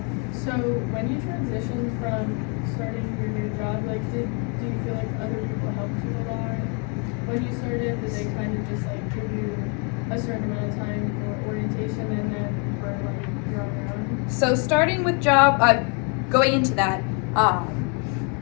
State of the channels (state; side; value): quieter; right; 36.5 dB